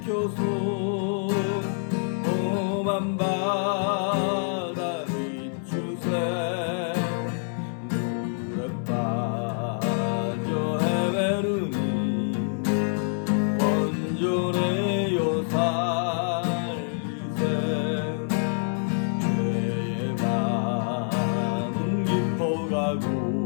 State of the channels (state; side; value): silent; right; 61 dB below the other